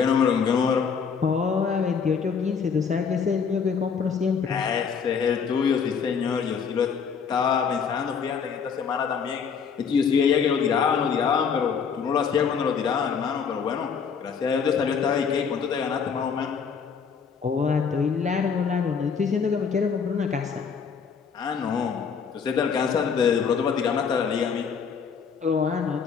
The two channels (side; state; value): right; quieter; 6.3 dB